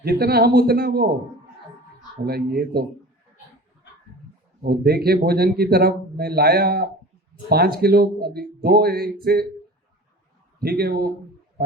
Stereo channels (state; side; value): normal; both; correlation 0.39